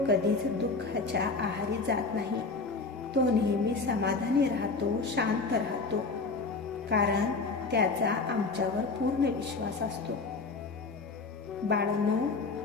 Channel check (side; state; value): right; quieter; 4.0 dB